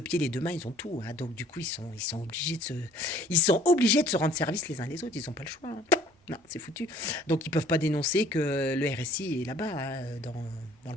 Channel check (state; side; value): normal; both; correlation 0.56